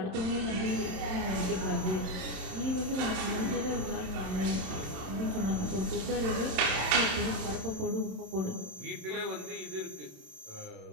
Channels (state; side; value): late; left; 27 ms